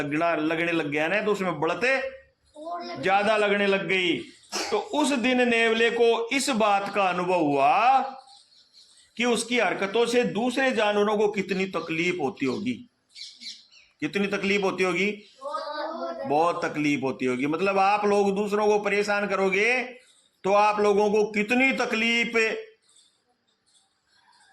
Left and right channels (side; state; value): both; identical; correlation 1.00